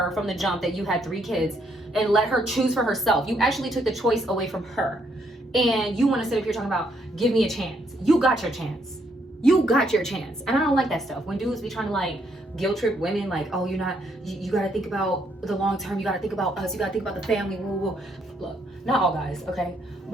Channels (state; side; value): normal; both; correlation 0.72